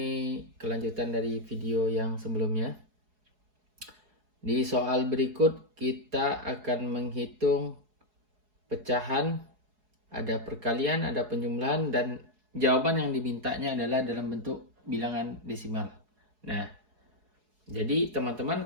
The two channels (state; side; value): late; left; 4.7 ms